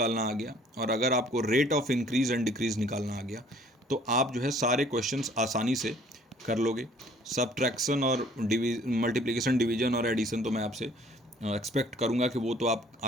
आ गया और अगर आपको rate of increase and decrease निकालना आ गया तो आप जो है सारे क्वेश्चंस आसानी से कर लोगे। सब्ट्रैक्शन और मल्टीप्लिकेशन, डिवीजन और एडिशन तो मैं आपसे एक्सपेक्ट करूंगा कि वो तो आप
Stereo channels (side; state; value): both; normal; correlation 0.57